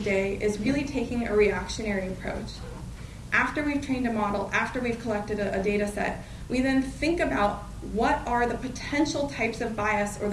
is really taking a reactionary approach. After we've trained a model, after we've collected a data set, we then think about what are the potential types of bias or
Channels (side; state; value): both; identical; correlation 1.00